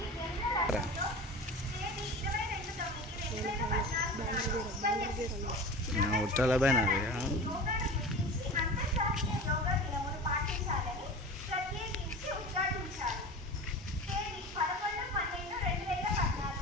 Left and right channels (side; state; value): both; normal; correlation 0.33